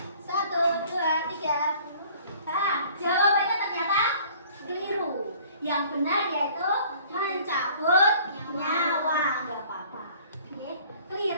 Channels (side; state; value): both; inverted; correlation -0.52